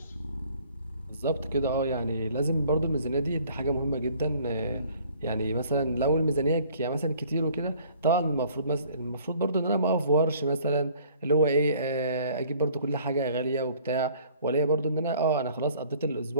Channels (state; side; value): inverted; both; correlation -0.55